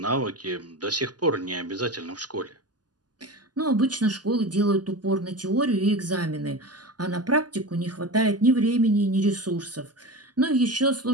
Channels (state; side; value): late; left; 0.69 ms